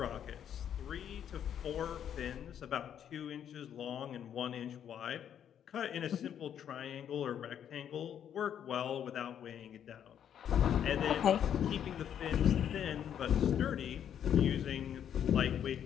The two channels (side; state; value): right; quieter; 9.3 dB